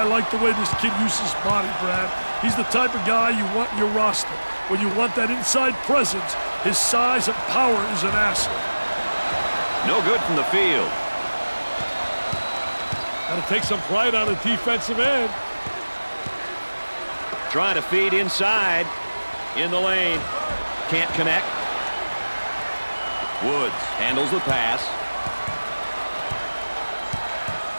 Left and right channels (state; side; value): inverted; both; correlation -1.00